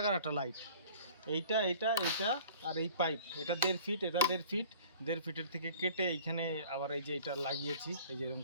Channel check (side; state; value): both; inverted; correlation -0.48